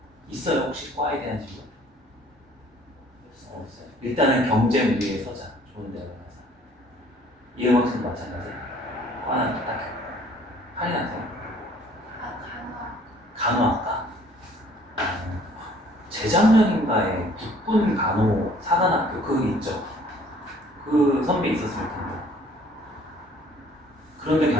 있어요 혹시 과에 대한 진로? 없어요. 일단은 경쟁 위에 서자. 좋은 데로 가서. 이음학생도 마찬가지. 과는 딱 할인하세요. 간호학과. 재작년인가에 국군 간호 사관학교 그거 있죠. 그 선배 있었을 텐데. 그런 데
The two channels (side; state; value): both; normal; correlation 0.56